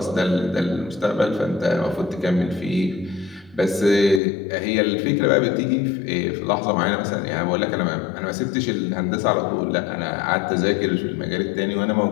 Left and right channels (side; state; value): right; drops out; at 4.2 s